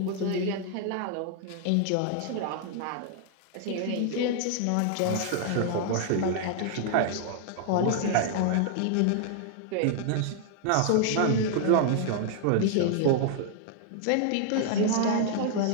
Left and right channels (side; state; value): both; different; correlation 0.00